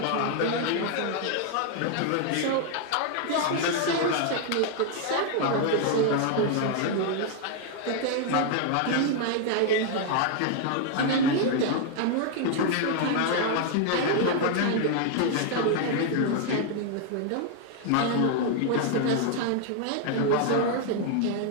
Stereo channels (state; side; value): different; both; correlation 0.00